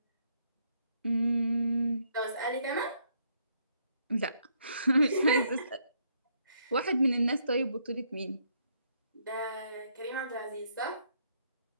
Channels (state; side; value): inverted; both; correlation -0.72